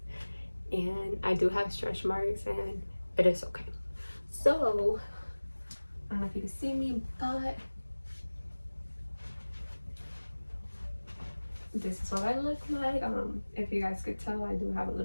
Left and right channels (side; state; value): both; inverted; correlation -1.00